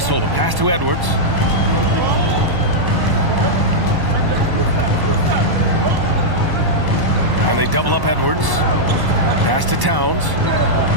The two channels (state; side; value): late; left; 1.1 ms